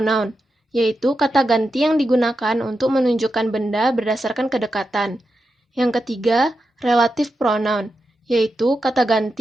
yaitu kata ganti yang digunakan untuk menunjukkan benda berdasarkan kedekatan. Yang ketiga, relative pronoun, yaitu kata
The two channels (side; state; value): both; normal; correlation 0.88